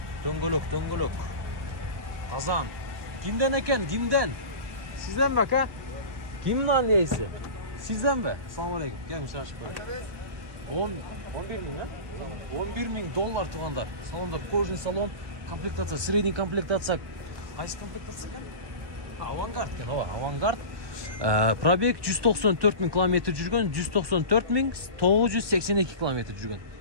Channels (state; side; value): late; left; 1.2 ms